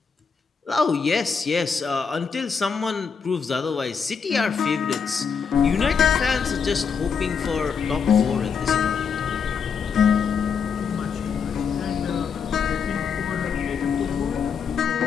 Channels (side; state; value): right; quieter; 6.2 dB